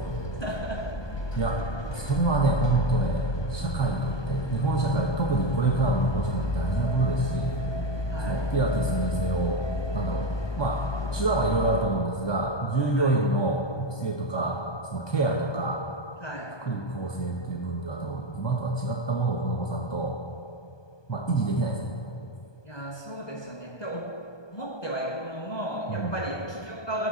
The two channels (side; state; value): right; late; 1.2 ms